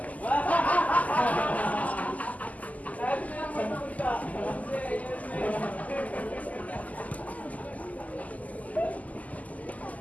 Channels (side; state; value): right; late; 0.075 ms